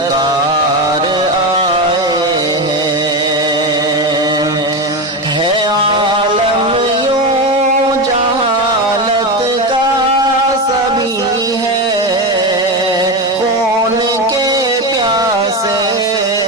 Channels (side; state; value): both; normal; correlation 0.17